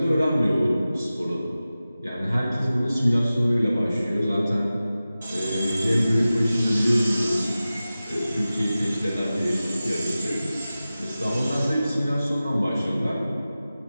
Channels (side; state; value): both; inverted; correlation -0.95